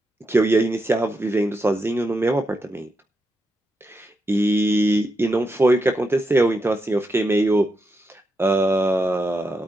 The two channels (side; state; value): both; normal; correlation 0.84